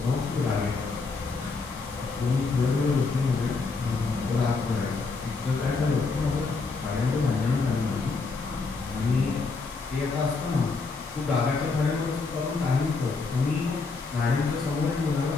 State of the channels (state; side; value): quieter; right; 4.2 dB